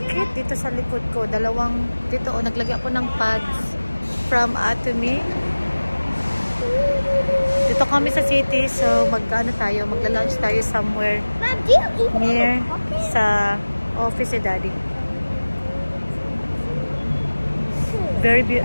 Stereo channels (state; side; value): inverted; both; correlation -1.00